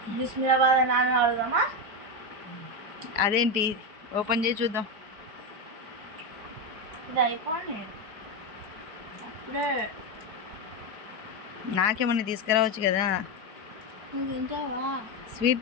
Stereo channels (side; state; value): left; late; 4.8 ms